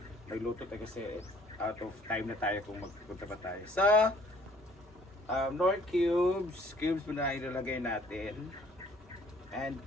nagluto tayo kasi out of time na tayo kung magpunta pa tayo. So, Nor cubes muna ilalagay natin. And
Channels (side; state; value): both; normal; correlation 0.58